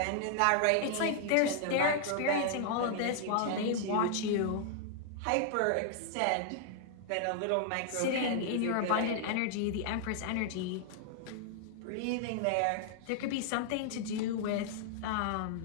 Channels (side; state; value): both; different; correlation -0.01